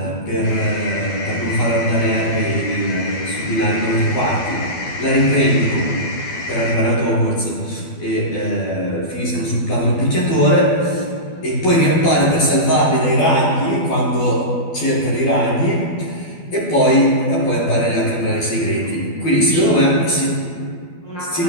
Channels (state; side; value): late; right; 12 ms